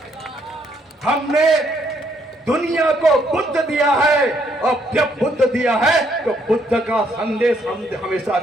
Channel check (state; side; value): normal; both; correlation 0.71